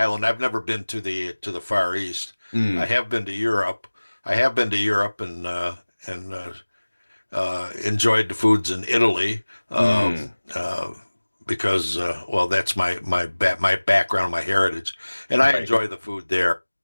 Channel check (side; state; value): both; inverted; correlation -1.00